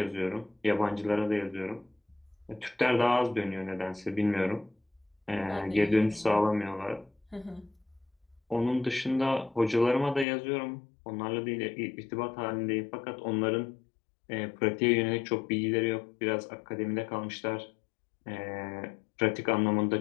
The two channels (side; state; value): right; drops out; at 10.2 s